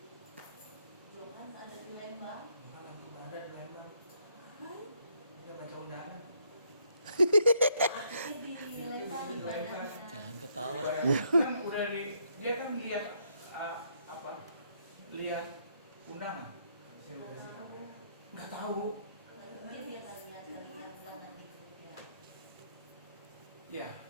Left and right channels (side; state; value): both; inverted; correlation -0.72